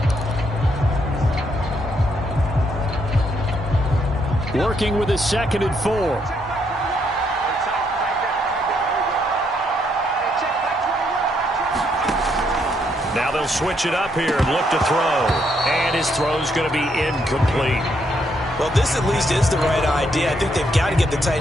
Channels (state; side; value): normal; both; correlation 0.74